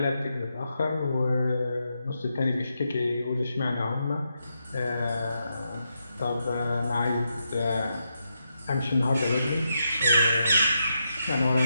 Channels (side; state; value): both; inverted; correlation -0.84